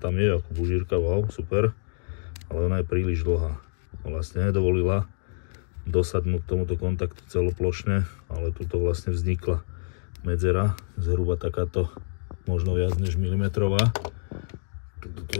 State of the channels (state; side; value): silent; right; digital silence